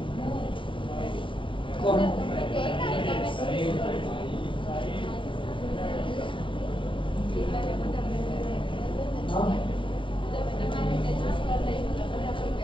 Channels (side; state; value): right; late; 0.25 ms